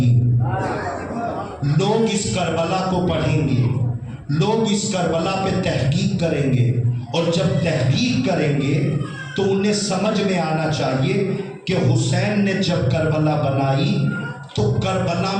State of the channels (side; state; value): both; identical; correlation 1.00